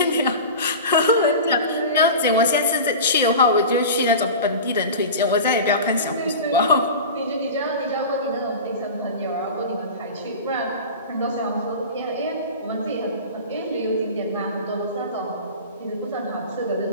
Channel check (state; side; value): inverted; both; correlation -0.32